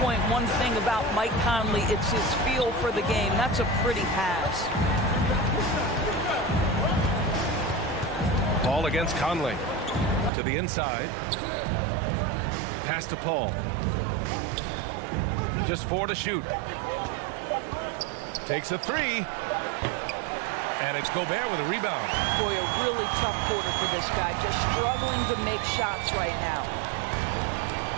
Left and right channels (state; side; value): drops out; left; at 10.3 s